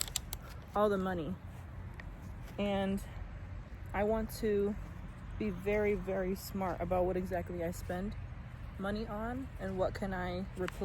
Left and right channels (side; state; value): both; identical; correlation 1.00